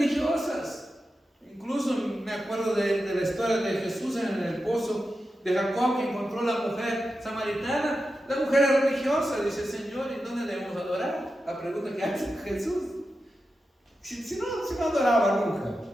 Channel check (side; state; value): both; normal; correlation 0.90